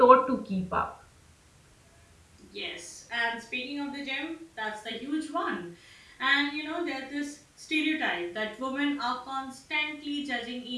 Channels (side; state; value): both; identical; correlation 1.00